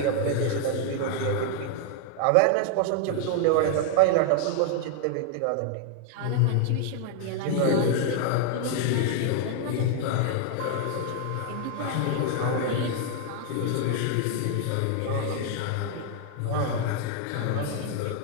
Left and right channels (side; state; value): both; different; correlation 0.00